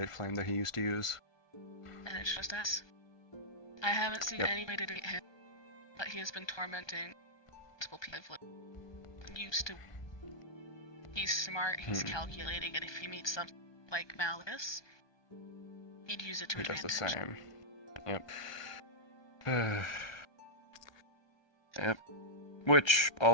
flame that he used to use. And it's just us. I haven't seen anybody to get him, but he has been tormenting multiple people. Used to. He's smart, he's calculating, and if he meets something like Malleus, he'd use it to advantage. Does the same. Yep. Yep. Which,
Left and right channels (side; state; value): right; late; 1.2 ms